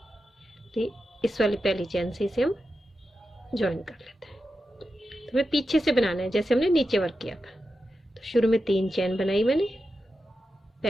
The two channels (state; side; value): normal; both; correlation 0.90